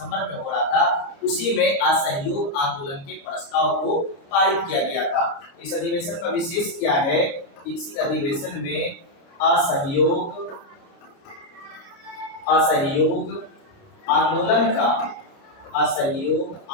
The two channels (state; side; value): late; right; 29 ms